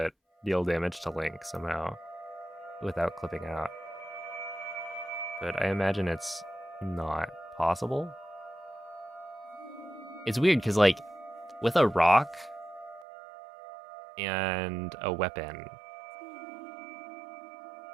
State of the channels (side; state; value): left; drops out; at 13.1 s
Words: deal damage to Link somehow without clipping out, but I imagine it's not possible. It's weird because like with a rock and a weapon,